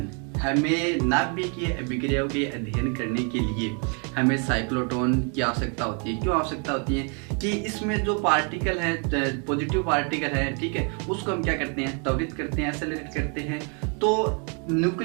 हमें नाभिकीय अभिक्रियाओं के अध्ययन करने के लिए हमें साइक्लोट्रॉन की आवश्यकता होती है। क्यों आवश्यकता होती है कि इसमें जो पार्टिकल है, पॉजिटिव पार्टिकल है, ठीक है, उसको हम क्या करते हैं, त्वरित करते हैं, एक्सेलरेट करते हैं। तो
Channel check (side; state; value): left; quieter; 37.2 dB